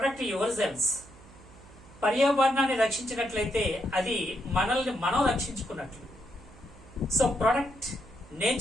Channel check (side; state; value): right; noise; hum, 22 dB below the sound